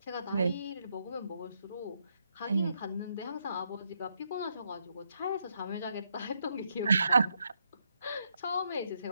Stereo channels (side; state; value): both; inverted; correlation -0.78